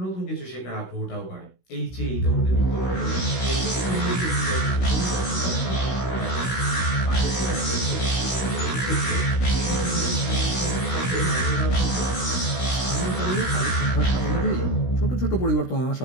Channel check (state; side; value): late; right; 16 ms